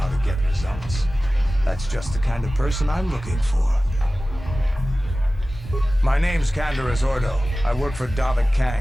to get results. That's just the kind of person I'm looking for. My name's Canderous Ordo. I work for Davik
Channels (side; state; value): both; normal; correlation 0.96